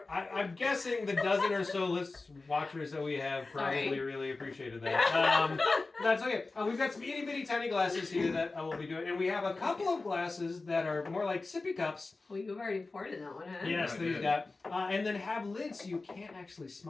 I'm guessing the dozen or so watchers that we have probably really appreciated that. That's okay. We've got some itty bitty tiny glasses here that I will be doing, and we have a couple of glasses that are more like sippy cups. Well, you've already poured in that one, huh? Yes, I they've did. got, and then have lids so you can't actually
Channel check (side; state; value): right; quieter; 3.6 dB